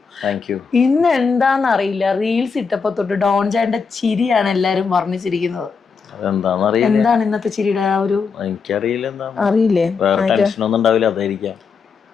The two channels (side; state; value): right; quieter; 5.4 dB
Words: Thank U. ഇന്ന് എന്താണെന്നറിയില്ല, റീൽസ് ഇട്ടപ്പോ തൊട്ട് ഡോൺ ചേട്ടന്റെ ചിരിയാണ് എല്ലാരും വർണ്ണിച്ചിരിക്കുന്നത്. എന്താണ് ഇന്നത്തെ ചിരിയുടെ എനിക്കറിയില്ല, അറിയില്ലേ? അതായിരിക്കാം.